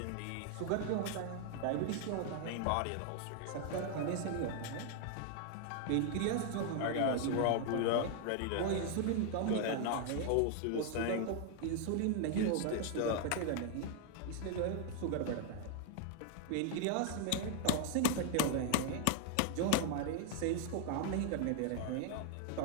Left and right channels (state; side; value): different; both; correlation 0.00